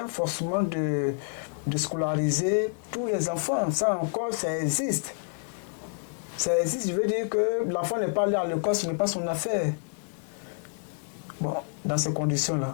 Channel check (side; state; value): right; silent; 59 dB below the other